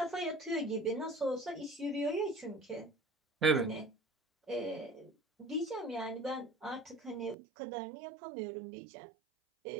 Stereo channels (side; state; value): left; drops out; at 7.4 s